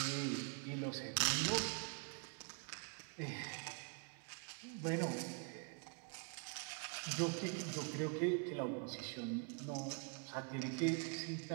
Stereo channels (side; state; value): left; quieter; 36.0 dB